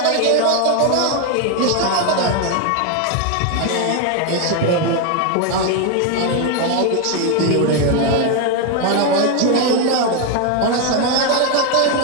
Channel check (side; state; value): both; different; correlation 0.01